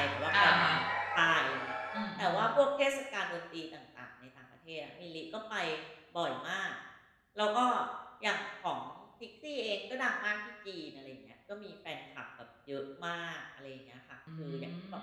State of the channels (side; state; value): both; identical; correlation 1.00